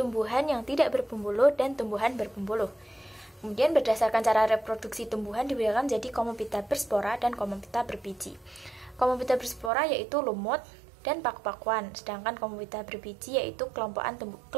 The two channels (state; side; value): drops out; left; at 9.7 s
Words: yang tidak berpembuluh dan tumbuhan berpembuluh. Kemudian berdasarkan cara reproduksi tumbuhan dibedakan menjadi Comophyta berspora dan Comophyta berbiji. Comophyta berspora yaitu lumut dan paku-pakuan, sedangkan Comophyta berbiji yaitu